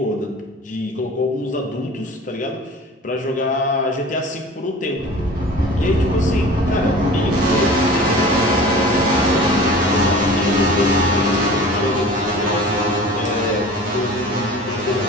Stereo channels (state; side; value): normal; both; correlation 0.41